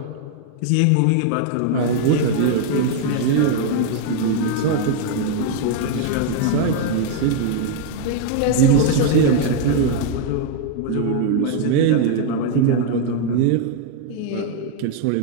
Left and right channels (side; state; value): both; different; correlation 0.00